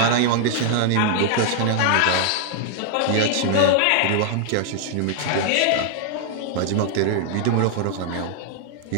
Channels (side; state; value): both; different; correlation 0.00